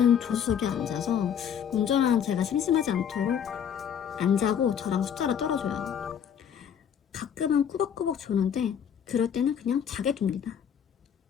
조수석에 앉아서 운전하는 제가 심심하지 않도록 안 자고 저랑 숫자를 떨어줘요. 가끔은 꾸벅꾸벅 조는데 그럴 때는 그냥 자게 둡니다.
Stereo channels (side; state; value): right; quieter; 8.4 dB